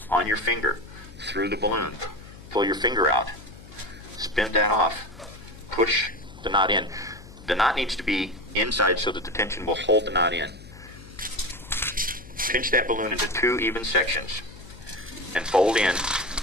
on your finger through the balloon. Pull your finger out. Spin that off. Push the knot in. The knot needs to be inside so that the tension will hold the knot in. Pinch that balloon into 2 even sections and fold in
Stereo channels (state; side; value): noise; left; hum, 18 dB below the sound